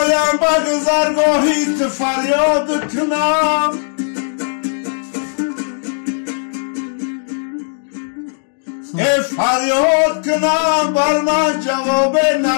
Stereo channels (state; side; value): silent; right; digital silence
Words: به گذرگاهیت فریاد کنم. فریاد کنم بر من جواب